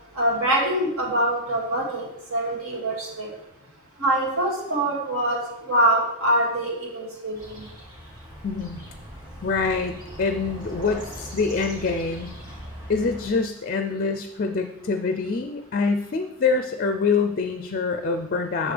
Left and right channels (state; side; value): normal; both; correlation 0.02